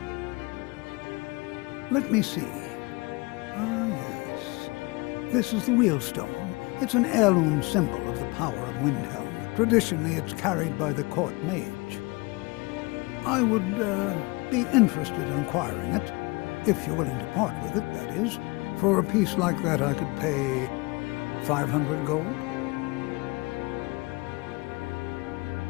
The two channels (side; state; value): right; quieter; 26.1 dB